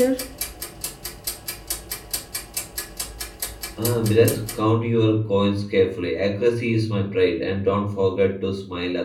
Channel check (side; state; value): both; identical; correlation 1.00